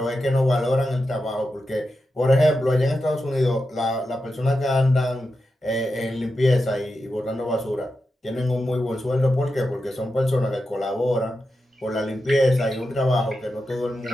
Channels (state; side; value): normal; both; correlation 0.89